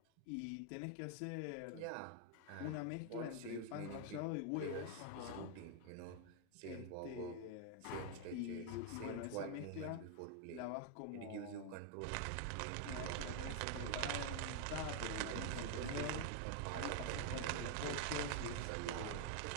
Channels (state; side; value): different; both; correlation 0.00